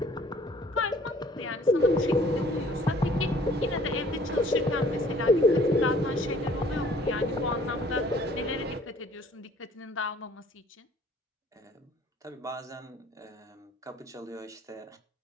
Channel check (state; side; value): normal; both; correlation 0.55